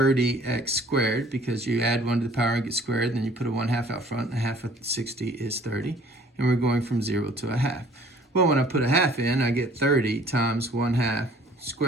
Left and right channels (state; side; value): normal; both; correlation 0.55